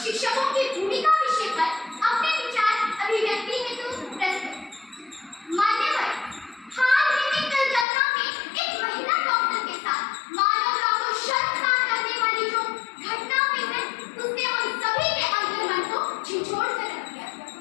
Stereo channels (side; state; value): right; drops out; at 7.9 s